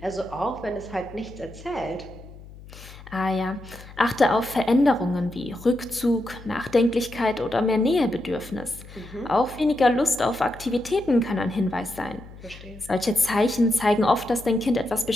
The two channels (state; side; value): noise; left; hum, 18 dB below the sound